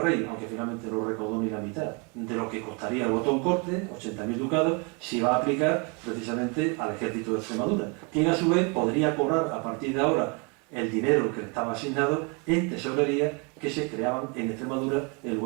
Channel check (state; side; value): quieter; left; 33.0 dB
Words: rey, aunque finalmente no recaudó ni la mitad de lo que costaría el voto en corte, 80.000 ducados, se va a aplicar precisamente al ejército de Extremadura, quien a su vez podría cobrar a partir de ahora el dinero que le estaba asignado en tesorería que se creaban en Extremadura en